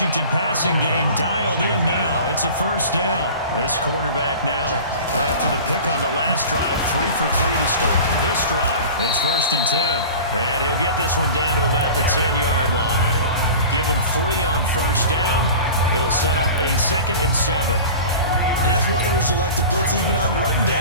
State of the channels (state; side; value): inverted; both; correlation -0.37